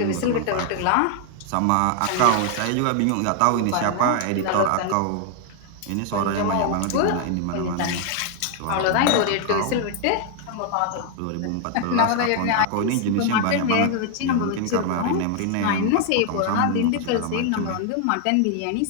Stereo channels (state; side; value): different; both; correlation 0.00